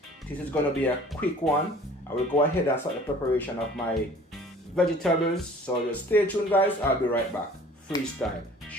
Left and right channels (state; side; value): normal; both; correlation 0.49